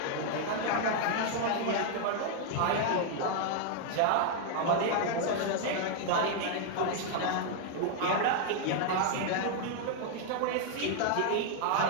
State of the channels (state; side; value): different; both; correlation 0.00